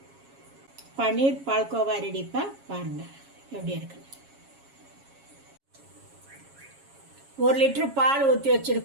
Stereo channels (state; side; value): late; left; 7.3 ms